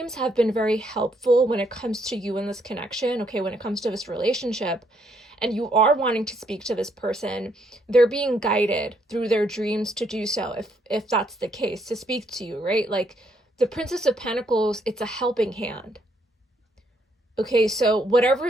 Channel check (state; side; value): normal; both; correlation 0.72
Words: have been very helpful when it comes to you in this connection, okay, when it comes to this relationship, and you are wanting to speak to this person, they're being guided through their dreams to do so, if that's the case, to speak to you, right? Like, the Princess of Pentacles, it's a helping hand. Okay, so whatever